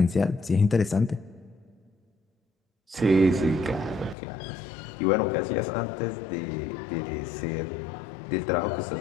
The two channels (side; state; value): right; drops out; at 4.2 s